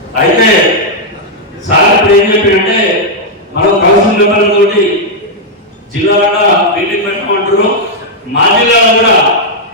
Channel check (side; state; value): both; normal; correlation -0.03